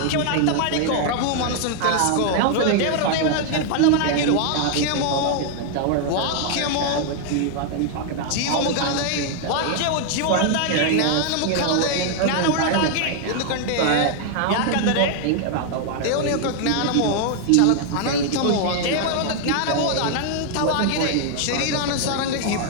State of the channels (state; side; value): different; both; correlation 0.00